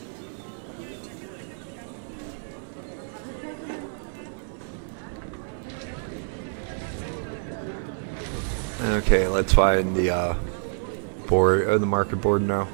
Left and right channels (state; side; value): silent; left; digital silence